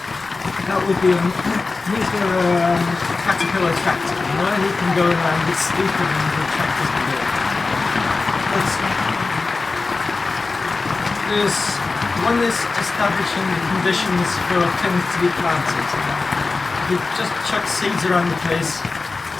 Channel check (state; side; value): quieter; right; 3.8 dB